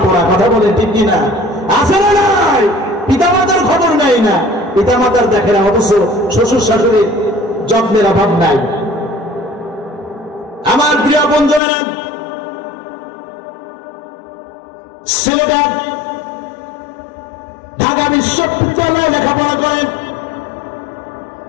পোড়া, কথা বলে ঠিক কিনা? আছে না নাই? পিতামাতার খবর নাই না, পিতামাতার দেখে না, অথচ শ্বশুর শাশুড়ির যত্নের অভাব নাই। আমার প্রিয় বন্ধুরা, ছেলেটা ঢাকা বিশ্ববিদ্যালয়ে লেখাপড়া করে,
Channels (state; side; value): drops out; right; at 11.6 s